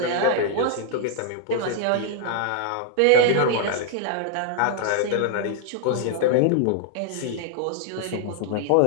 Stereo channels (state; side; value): different; both; correlation -0.01